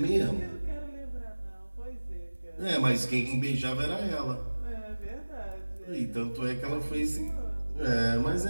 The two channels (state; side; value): inverted; both; correlation -1.00